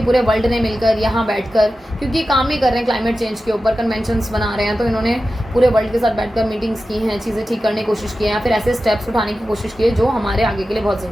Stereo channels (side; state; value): both; normal; correlation 0.93